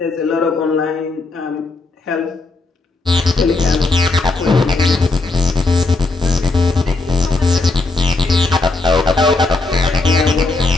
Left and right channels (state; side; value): quieter; right; 3.4 dB